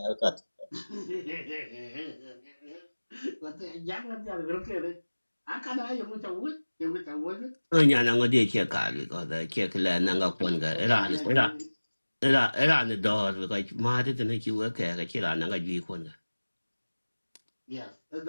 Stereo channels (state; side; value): inverted; both; correlation -1.00